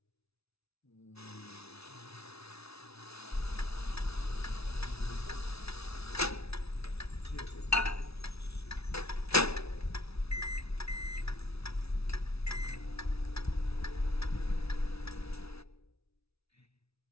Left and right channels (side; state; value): right; late; 0.78 ms